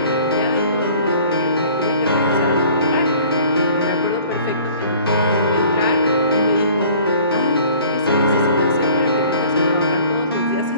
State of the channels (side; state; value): both; inverted; correlation -0.50